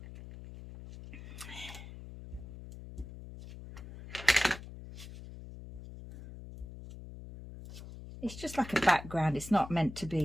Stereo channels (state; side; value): noise; left; hum, 13 dB below the sound